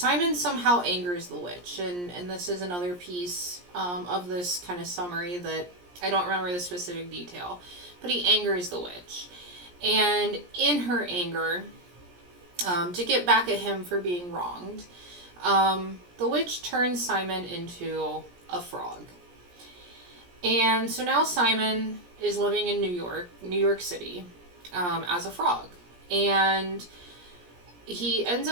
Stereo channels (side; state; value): left; late; 17 ms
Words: somehow angers the witch. And this is another piece of this kind of summary that I don't remember the specific detail. But he angers the witch. And in her anger, to get back at him for being wronged, the witch turns Simon into a frog. And so now Simon is living in New York City, as a frog. And he ends